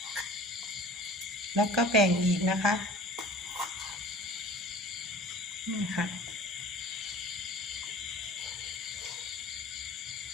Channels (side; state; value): both; normal; correlation 0.44